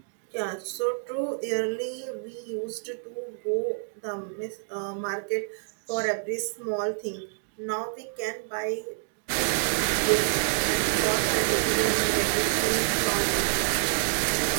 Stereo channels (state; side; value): silent; left; digital silence